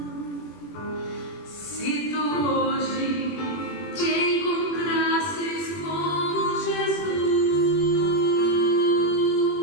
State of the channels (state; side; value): late; right; 21 ms